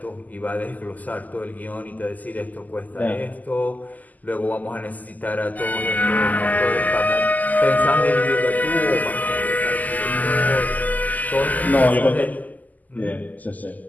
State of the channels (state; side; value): late; right; 0.080 ms